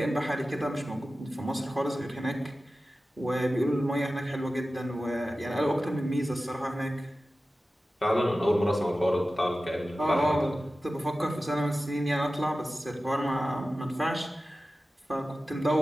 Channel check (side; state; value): both; normal; correlation 0.95